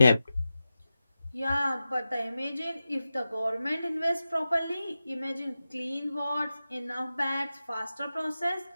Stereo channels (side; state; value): both; inverted; correlation -0.93